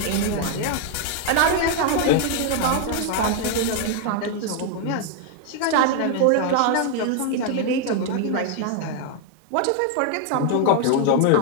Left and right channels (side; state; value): both; different; correlation 0.00